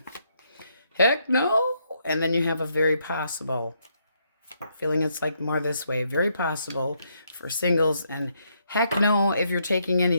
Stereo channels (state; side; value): inverted; both; correlation -0.75